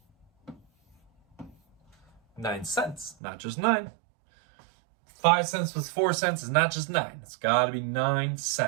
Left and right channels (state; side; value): drops out; left; at 3.2 s